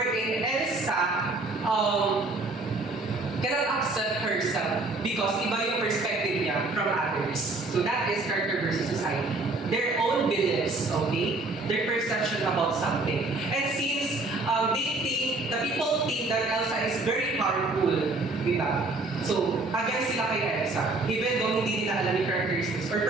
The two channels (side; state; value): left; quieter; 3.1 dB